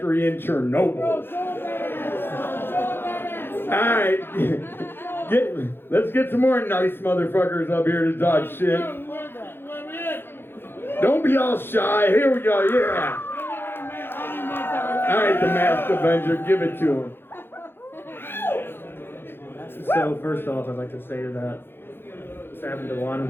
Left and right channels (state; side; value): late; right; 0.10 ms